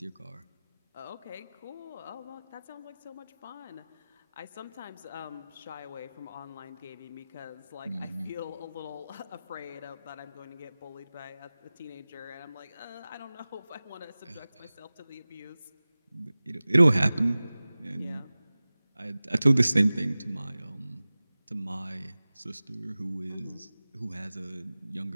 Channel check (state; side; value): inverted; both; correlation -0.98